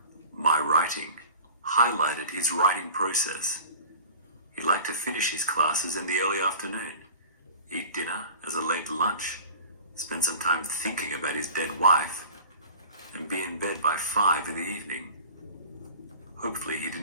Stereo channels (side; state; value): both; inverted; correlation -0.41